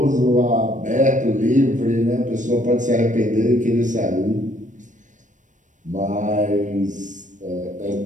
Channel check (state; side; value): late; left; 0.37 ms